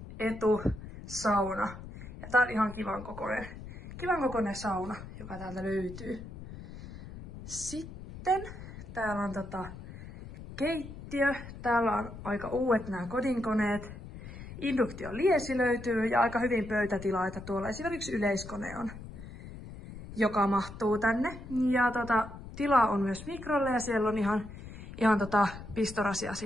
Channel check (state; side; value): noise; left; rumble, 13 dB below the sound